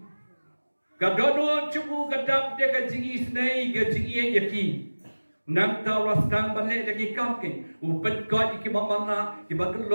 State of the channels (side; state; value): both; inverted; correlation -1.00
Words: kadono cubu kadap dia ka jingi snei ka jingi yaki nang taw rastang bale lagi kam ke upen ko ki babana ki